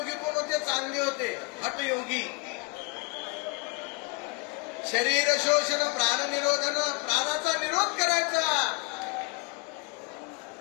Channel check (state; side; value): quieter; right; 28.7 dB